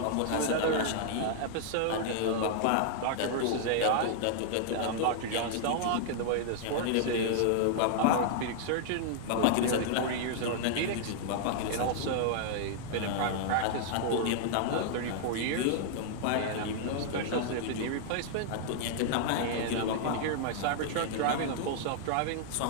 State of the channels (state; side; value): different; both; correlation -0.01